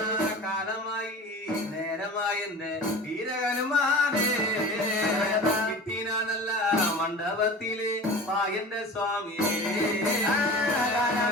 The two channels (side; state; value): both; normal; correlation 0.37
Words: കാലമായി നേരമായെന്റെ വീരഹനുമാനെ കിട്ടിനാനല്ല മണ്ഡപത്തില് മായന്റെ സ്വാമിയെ